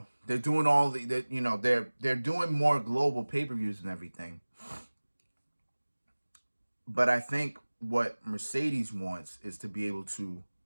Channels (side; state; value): both; inverted; correlation -1.00